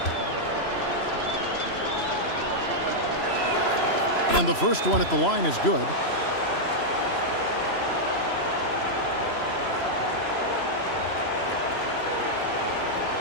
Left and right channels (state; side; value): late; right; 3.0 ms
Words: And the first one at the line is good.